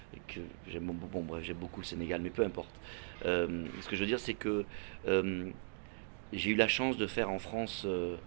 que j'aime beaucoup. Bon, bref, j'aime beaucoup le Sénégal, mais peu importe. Ce que je veux dire, c'est que j'ai eu la chance de faire en France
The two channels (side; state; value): left; silent; digital silence